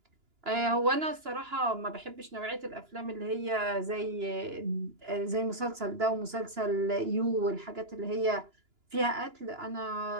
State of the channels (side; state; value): left; late; 2.9 ms